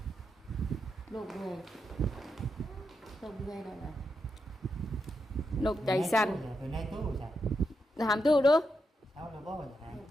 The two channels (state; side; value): normal; both; correlation 0.84